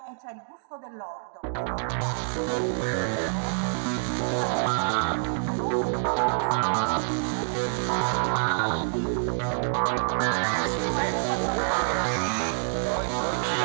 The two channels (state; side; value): silent; left; digital silence